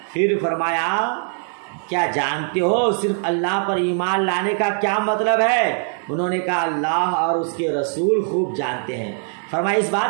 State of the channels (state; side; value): silent; left; 55 dB below the other